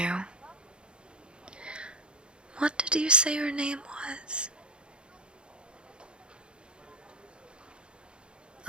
What did you say your name was?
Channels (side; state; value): left; late; 0.053 ms